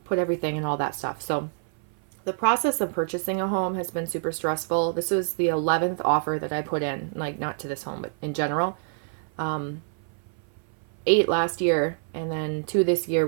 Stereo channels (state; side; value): silent; left; 58 dB below the other